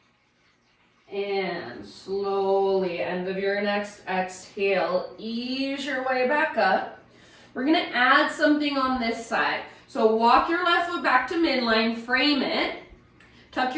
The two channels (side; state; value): both; identical; correlation 1.00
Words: And slowly, end of your next exhale, ease your way back up. We're gonna add something on this side. So walk your left foot back to midline, frame it, tuck